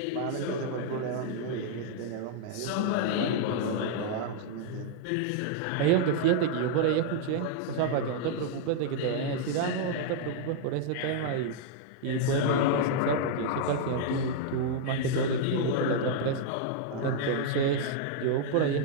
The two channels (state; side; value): different; both; correlation -0.01